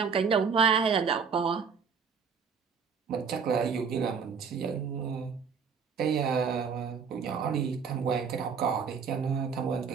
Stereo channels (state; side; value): quieter; left; 6.1 dB